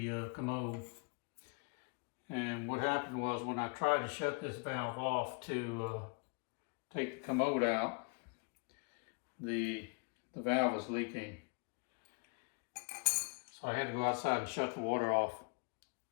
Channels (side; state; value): right; quieter; 33.9 dB